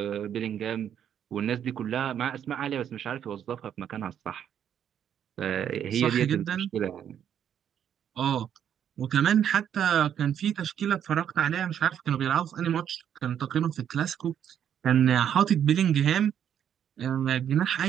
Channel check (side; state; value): left; quieter; 9.3 dB